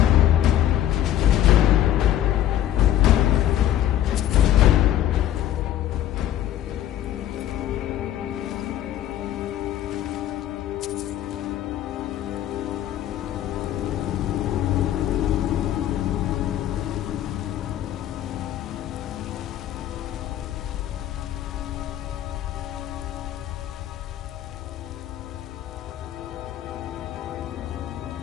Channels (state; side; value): quieter; right; 12.1 dB